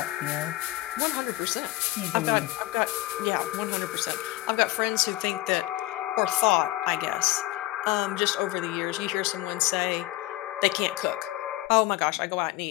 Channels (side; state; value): right; quieter; 18.1 dB